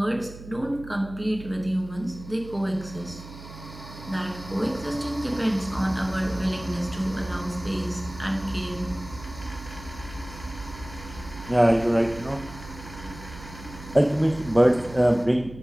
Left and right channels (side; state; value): right; noise; hum, 15 dB below the sound